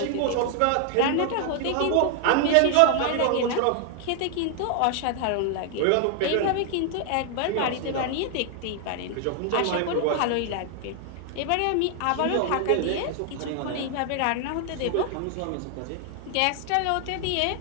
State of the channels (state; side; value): different; both; correlation 0.00